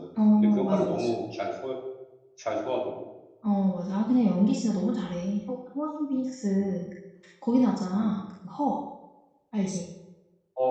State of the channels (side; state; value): both; identical; correlation 1.00